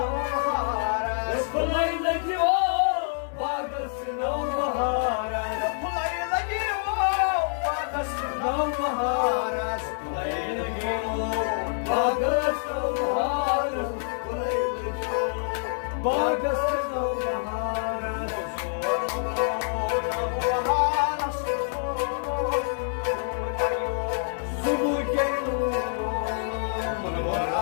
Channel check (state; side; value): silent; right; digital silence